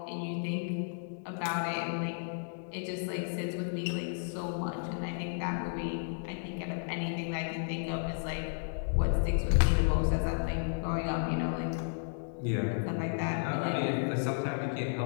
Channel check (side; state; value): right; silent; digital silence